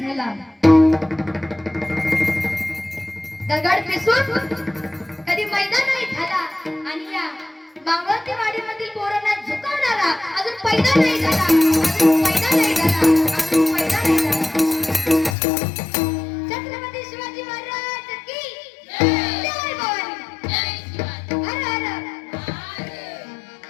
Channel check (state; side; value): drops out; right; at 15.4 s